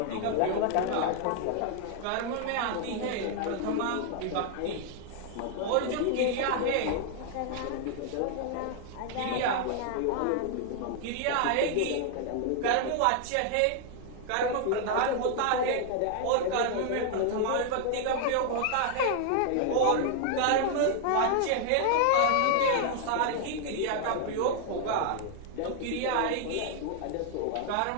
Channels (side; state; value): both; different; correlation 0.00